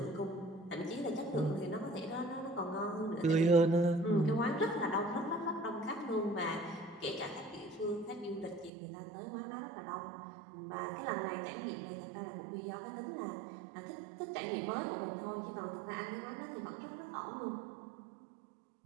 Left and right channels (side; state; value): left; drops out; at 8.7 s